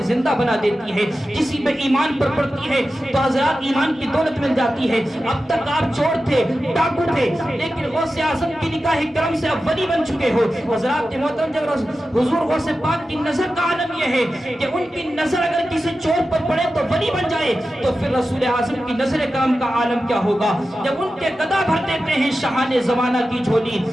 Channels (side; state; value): both; normal; correlation 0.93